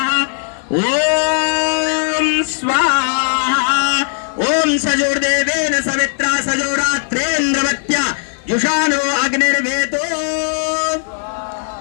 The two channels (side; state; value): right; silent; digital silence